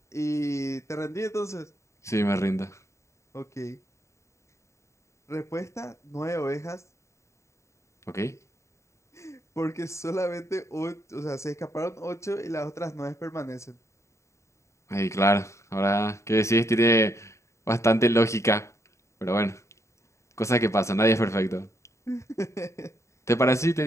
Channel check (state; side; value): late; right; 0.14 ms